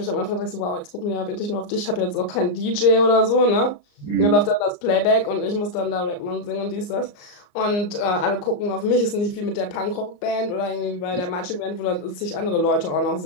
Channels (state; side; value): late; right; 34 ms